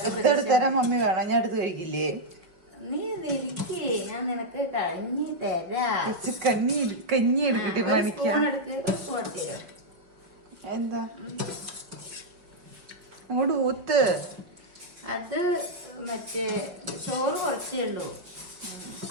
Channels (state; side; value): late; left; 5.8 ms